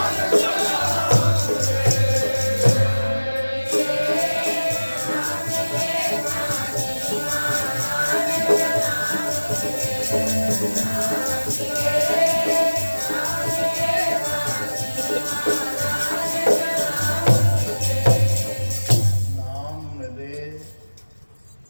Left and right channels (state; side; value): inverted; both; correlation -1.00